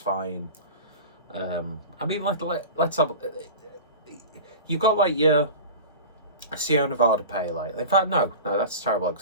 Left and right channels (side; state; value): both; inverted; correlation -0.33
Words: I mean, let's have. You got like your Sierra Nevada Pale Ale. In fact, no, that's terrible